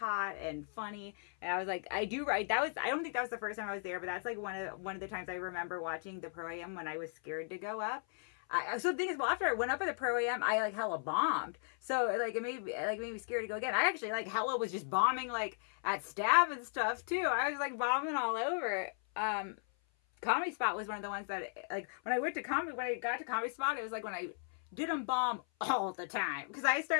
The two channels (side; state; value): right; silent; 54 dB below the other